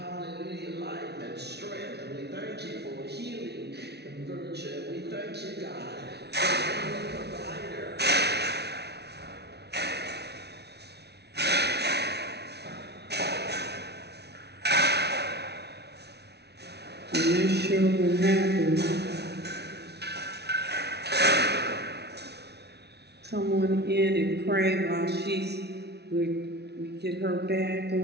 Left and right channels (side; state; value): left; late; 0.49 ms